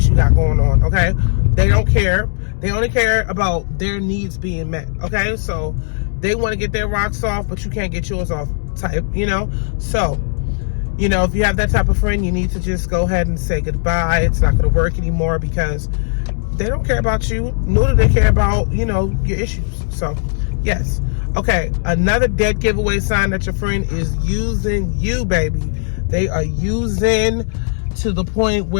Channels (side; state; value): right; silent; digital silence